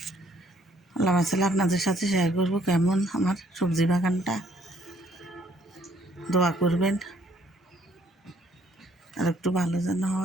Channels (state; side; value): normal; both; correlation 0.65